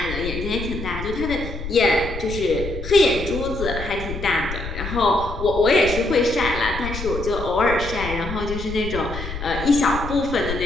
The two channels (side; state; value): left; noise; rumble, 8 dB below the sound